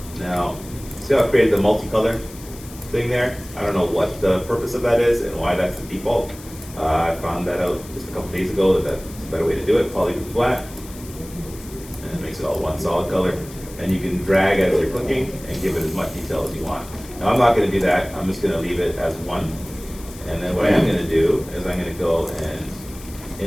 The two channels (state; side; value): noise; left; hiss, 18 dB below the sound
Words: Now, see how I created the multicolor thing there? I don't know what the purpose of that is and why that's the default. I found that out just a couple days ago that that's a better way to do it. Polygroup flat, and it makes it all one solid color. And you can drag as you're clicking and give it as much detail as you want. Now I'm not going to do that. I'm just going to leave it as one. And then what I am going to do is I'm going to go